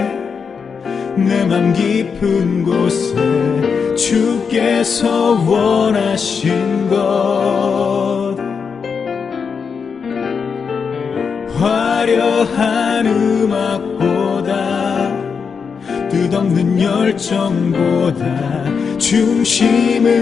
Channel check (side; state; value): right; quieter; 5.9 dB